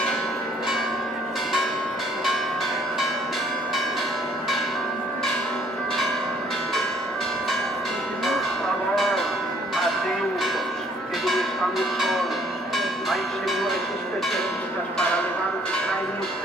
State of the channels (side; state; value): both; normal; correlation 0.62